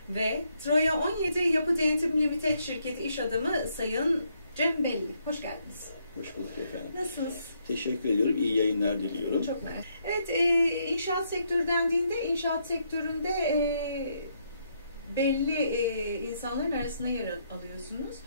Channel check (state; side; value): inverted; both; correlation -0.75